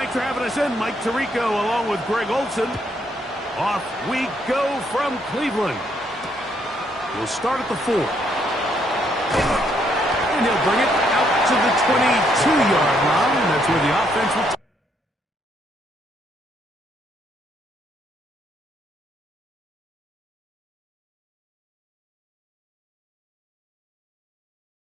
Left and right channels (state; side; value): normal; both; correlation 0.72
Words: Thanks for having us in, Mike Tirico, along with Greg Olson. Off we go from Cleveland. We'll start at the 4. And he'll bring it out to the 22-yard line. That's where the offense will